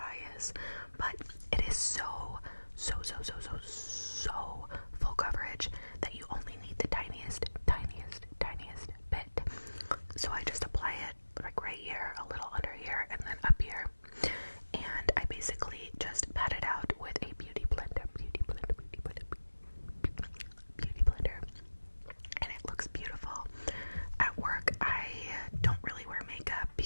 is. But it is so full coverage that you only need the tiniest bit. So I just apply it like right here, a little under here, and then up here. And I basically just pat it out with a beauty blender. And it looks beautiful. At work, I don't really wear makeup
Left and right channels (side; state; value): both; inverted; correlation -1.00